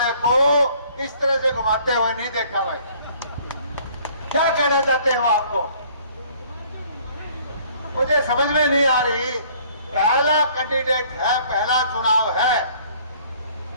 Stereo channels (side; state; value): both; inverted; correlation -0.57